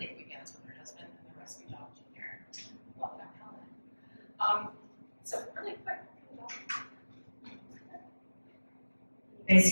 weekends with her husband and the rescue dog, Junior. Welcome, Helen. So really quick. You guys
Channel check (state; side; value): inverted; both; correlation -1.00